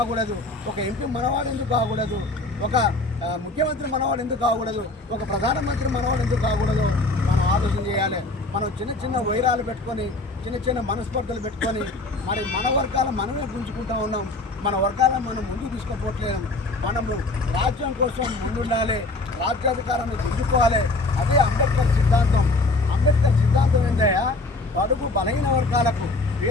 ఒక ఎంపీ మనవాడు ఎందుకు కాకూడదు? ఒక ముఖ్యమంత్రి మనవాడు ఎందుకు కాకూడదు? ఒక ప్రధానమంత్రి మనవాడు ఎందుకు కాకూడదు? మనం ఆలోచన చేయాలి. మనం చిన్న చిన్న వైరాలు పెట్టుకొని, చిన్న చిన్న మనస్పర్ధలు పెట్టుకొని మరి మన వర్గాల మనమే గుంజుకుంటూ ఉన్నాం. మన వర్గాలను మనం ముందుకు తీసుకుపోవట్లేము. మనము రాజ్యం కోసం ముందుండాలి, రాజ్యాధికారాన్ని గుంజుకోవాలి. అదే అంబేద్కర్ సిద్ధాంతం. అంబేద్కర్ సిద్ధాంతం ఏంటయ్యా? అడుగు బలహీన వర్గాలకు,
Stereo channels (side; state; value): right; quieter; 3.0 dB